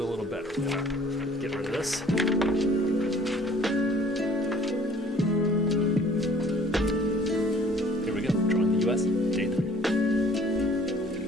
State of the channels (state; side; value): normal; both; correlation 0.53